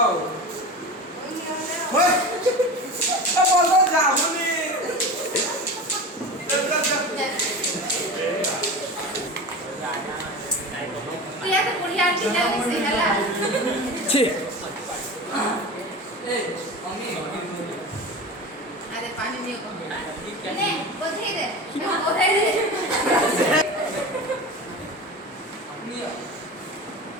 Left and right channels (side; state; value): both; normal; correlation 0.30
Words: ଆଉ। ବନ୍ଦ ଯାଉନି। ପ୍ରିୟା ତ ବଢ଼ିଆ ଆଣ୍ଟିଟା ମିଶି ହେଲା। ଆରେ ପାଣି ନିଅ ନେ ବଧେଇ ଦେ ବଧେଇ ଦେ